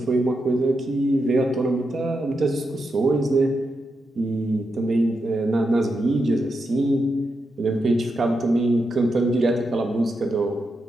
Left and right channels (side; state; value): both; normal; correlation 0.86